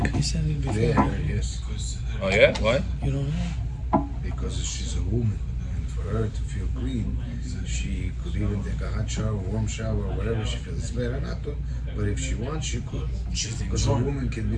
He said it before. Yeah, yes. Oh yeah? Why? You don't know? Because she's a woman, and for her to feel clean, she could even take a hot shower, warm shower, whatever she feels. It's better not to, but if she wants, she could. Because a woman can be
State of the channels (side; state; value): both; identical; correlation 1.00